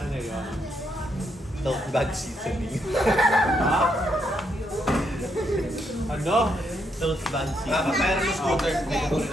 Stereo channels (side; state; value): both; normal; correlation 0.77